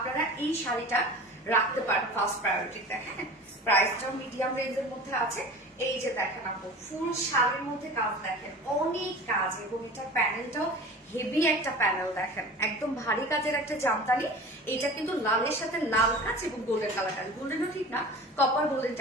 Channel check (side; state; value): both; normal; correlation 0.37